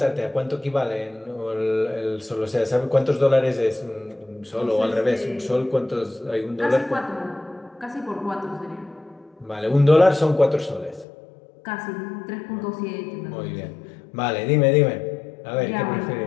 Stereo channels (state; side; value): drops out; right; at 11.1 s